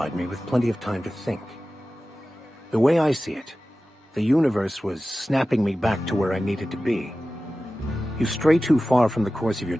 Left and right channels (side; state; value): both; normal; correlation 0.95